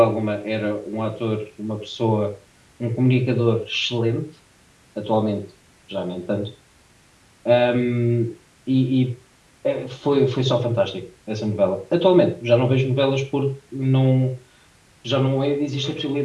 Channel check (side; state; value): both; identical; correlation 1.00